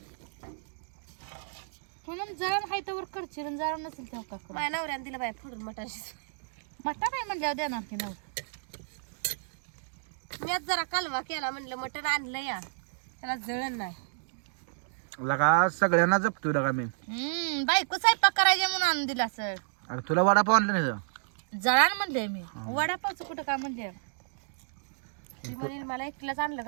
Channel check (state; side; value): silent; left; digital silence